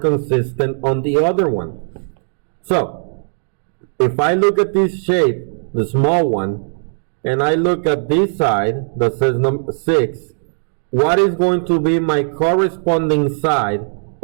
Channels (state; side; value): silent; left; digital silence